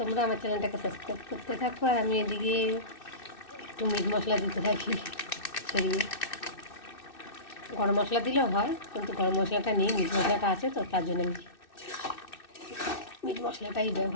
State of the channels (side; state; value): right; late; 2.6 ms